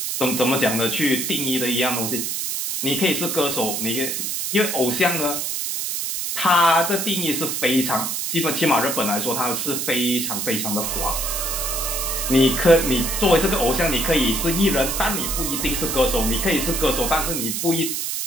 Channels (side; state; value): right; noise; hiss, 2 dB below the sound